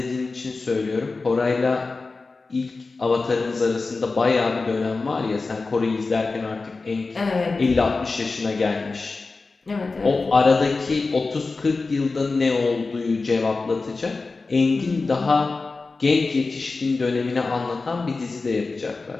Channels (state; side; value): quieter; right; 3.9 dB